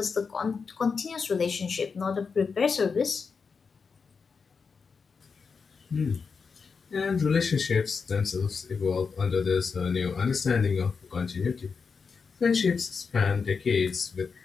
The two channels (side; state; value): right; quieter; 5.3 dB